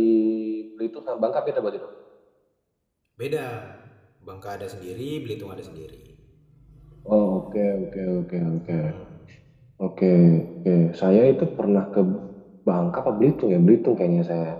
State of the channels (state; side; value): identical; both; correlation 1.00